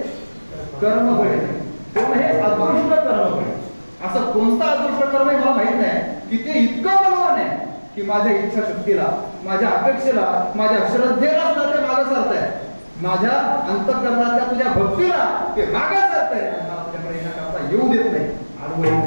कर्म बळे, कोण हे अदृष्ट कर्म बळे. असं कोणता अदृष्ट कर्म आहे मला माहित नाही की ते इतकं बलवान आहे की माझ्या इच्छाशक्तीला, माझ्या अपेक्षेला, माझ्या श्रद्धेला सुद्धा ते मागे सरत आहे. माझ्या अंतःकरणातल्या तुझ्या भक्तीला ते मागे सरत आहे आणि मला तुझ्याकडे येण्याकरता येऊ देत नाही, अडवू येत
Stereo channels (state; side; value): inverted; both; correlation -1.00